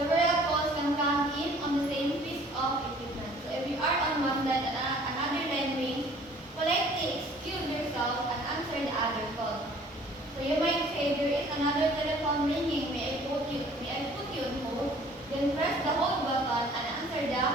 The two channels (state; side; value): normal; both; correlation 0.53